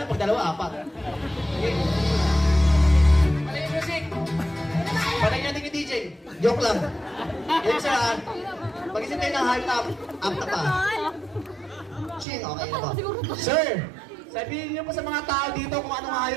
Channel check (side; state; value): left; drops out; at 12.2 s